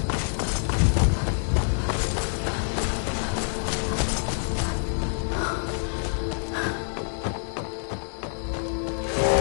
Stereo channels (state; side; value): silent; right; 61 dB below the other